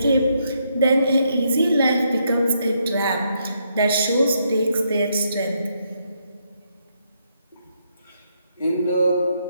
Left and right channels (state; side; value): inverted; both; correlation -0.77